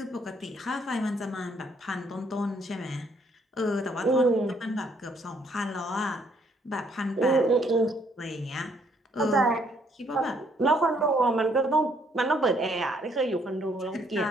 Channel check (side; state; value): both; normal; correlation 0.67